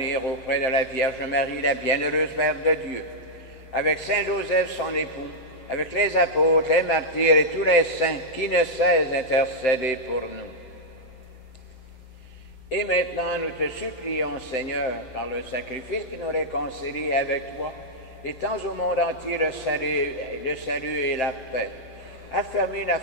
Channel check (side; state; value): right; late; 7.8 ms